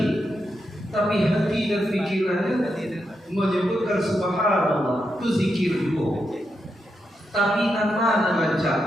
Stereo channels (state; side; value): normal; both; correlation 0.84